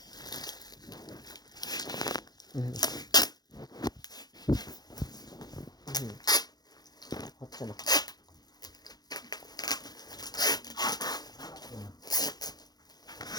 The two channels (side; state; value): right; late; 0.19 ms